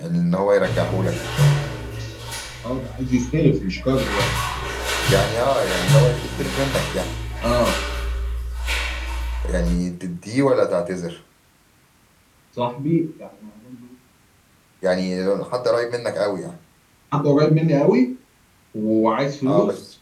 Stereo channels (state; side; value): identical; both; correlation 1.00